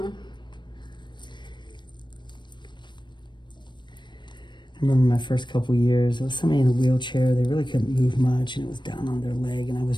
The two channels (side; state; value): right; late; 0.22 ms